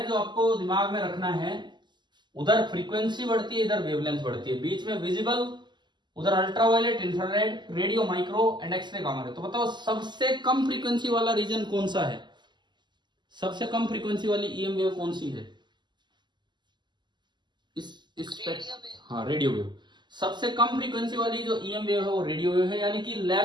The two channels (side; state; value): left; late; 0.21 ms